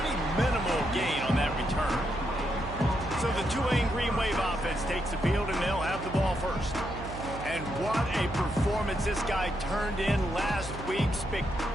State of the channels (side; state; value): right; noise; hum, 10 dB below the sound